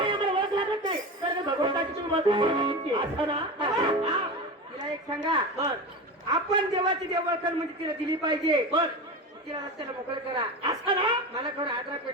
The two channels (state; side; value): normal; both; correlation 0.25